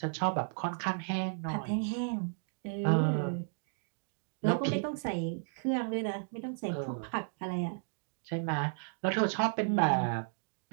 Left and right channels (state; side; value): silent; left; digital silence